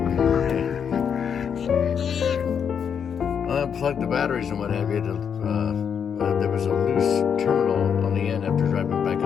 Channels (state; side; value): quieter; right; 7.4 dB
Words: I unplugged the batteries and what have you. There was a loose terminal on the end after driving back